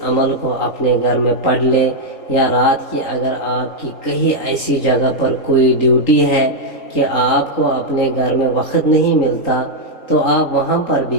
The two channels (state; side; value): late; right; 3.8 ms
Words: عمل کو اپنے گھر میں پڑھ لیں، یا رات کی اگر آپ کی کہیں ایسی جگہ پر کوئی ڈیوٹی ہے کہ آپ کو اپنے گھر میں وقت نہیں ملتا، تو آپ وہاں پر بھی